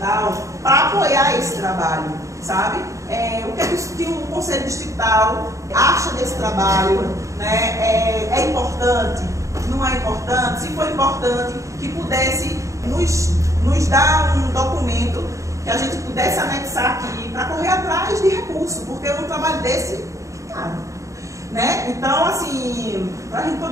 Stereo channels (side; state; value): left; late; 0.15 ms